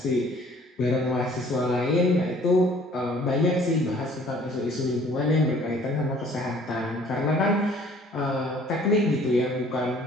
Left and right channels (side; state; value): both; normal; correlation 0.55